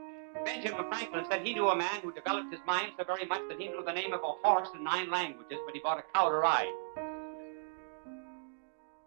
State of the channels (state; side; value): silent; left; digital silence